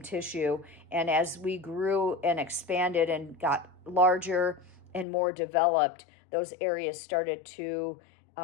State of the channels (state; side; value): drops out; right; at 5.1 s